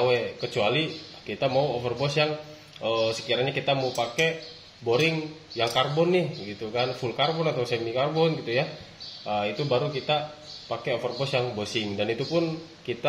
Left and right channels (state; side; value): identical; both; correlation 1.00